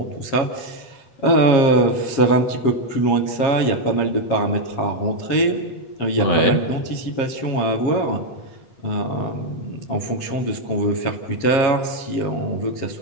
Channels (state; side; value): late; right; 7.4 ms